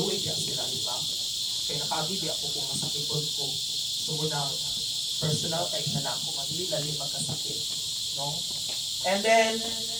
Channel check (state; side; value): identical; both; correlation 1.00